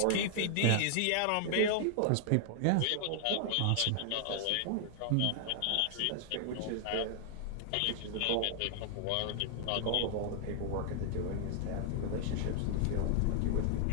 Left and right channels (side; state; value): both; different; correlation 0.00